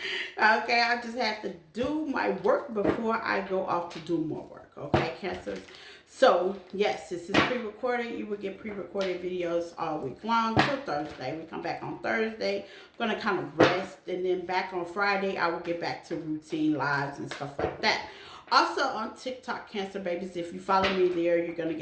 Okay, I just have to do my work before I go off to do more work. Okay, Cancers. So, yes, this is pre-recorded. You will get pre-recorded videos all week long till Thursday. We come back on Thursday. I'm going to kind of rest. And then back on Friday, I will get back to routine lives and stuff like that. Also on TikTok, Cancer babies, if you follow me there, you're going to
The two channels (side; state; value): both; identical; correlation 1.00